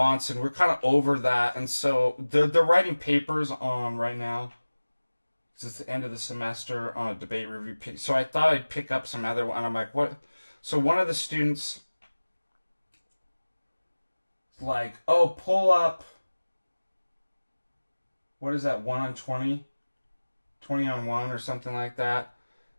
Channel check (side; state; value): both; inverted; correlation -1.00